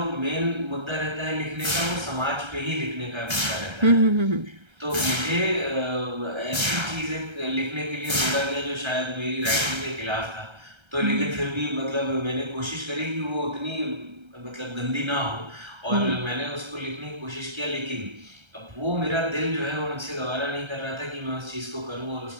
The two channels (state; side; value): late; left; 1.3 ms